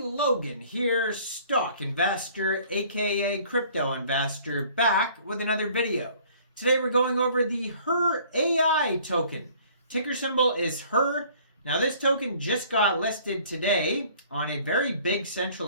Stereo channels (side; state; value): both; inverted; correlation -0.54